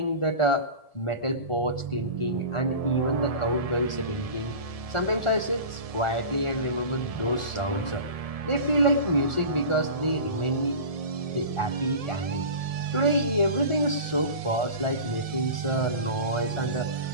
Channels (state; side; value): late; right; 1.4 ms